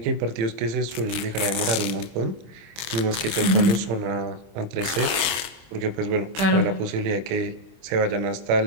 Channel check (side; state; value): left; late; 25 ms